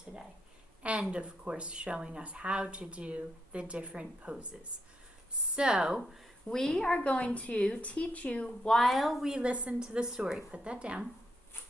And of course, showing us how to do the different poses. So we are going to teach you while we listen to the story. Put that down.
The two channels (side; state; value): both; normal; correlation 0.80